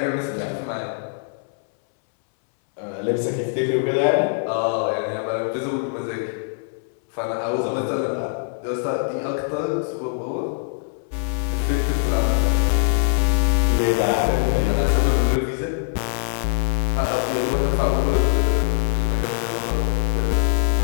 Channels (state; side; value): silent; right; 64 dB below the other